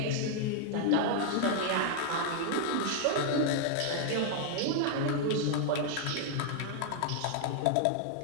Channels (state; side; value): different; both; correlation 0.00